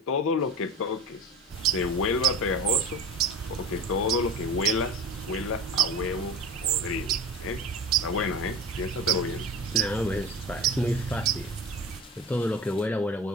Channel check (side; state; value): both; normal; correlation 0.31